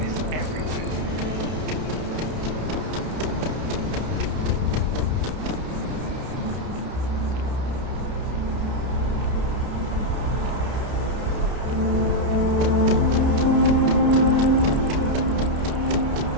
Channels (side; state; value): left; late; 31 ms